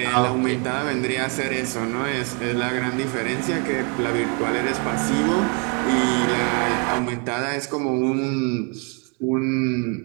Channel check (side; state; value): left; quieter; 34.4 dB